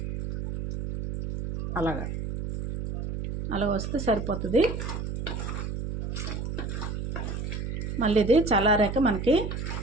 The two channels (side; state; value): right; noise; hum, 4 dB below the sound